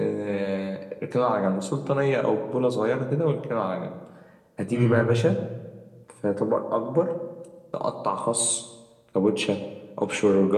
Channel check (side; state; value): both; identical; correlation 1.00